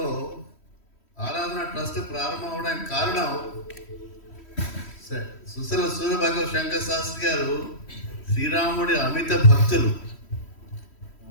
ఆరాధన ట్రస్ట్ ప్రారంభం అవడానికి కారణం సుశల సూర్యభగవ శంకర శాస్త్రి గారు శ్రీరాముడి అమిత భక్తులు.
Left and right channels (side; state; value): right; late; 3.1 ms